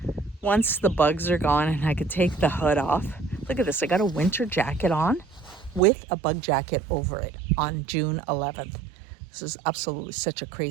Once the bugs are gone and I could take the hood off, look at this, I got a winter jacket on with a bug jacket over it on June 11th. This is absolutely such a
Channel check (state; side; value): drops out; left; at 5.8 s